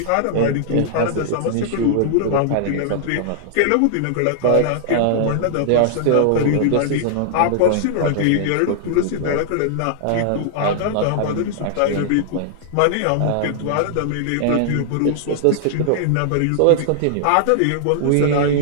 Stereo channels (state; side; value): different; both; correlation -0.01